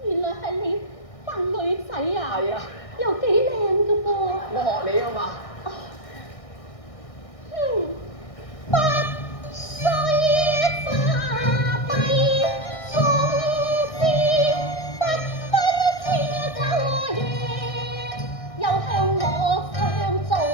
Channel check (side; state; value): right; late; 1.6 ms